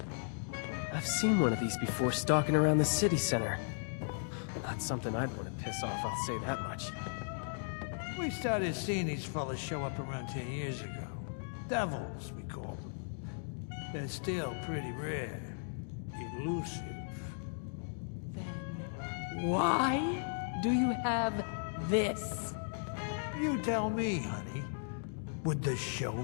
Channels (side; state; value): right; silent; digital silence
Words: I've seen one of these before stalking around the city center. Not something I'd want to piss off, I'll say that much. We started seeing these fellas show up around 10 years ago. Devils, we called them. They're still pretty rare. Elusive. Why do you have this? You tell me, honey. Would the